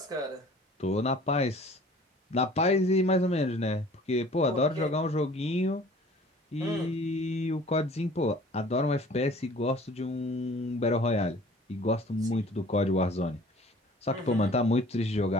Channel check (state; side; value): normal; both; correlation 0.49